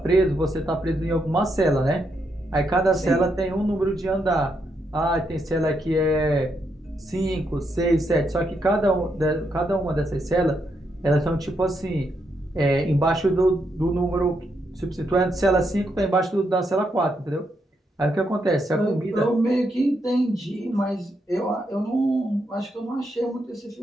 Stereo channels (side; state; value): both; normal; correlation 0.80